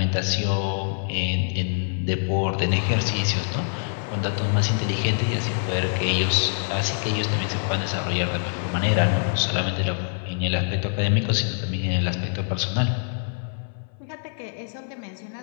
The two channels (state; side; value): silent; right; 57 dB below the other